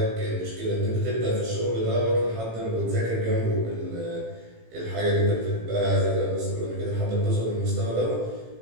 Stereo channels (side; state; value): left; late; 18 ms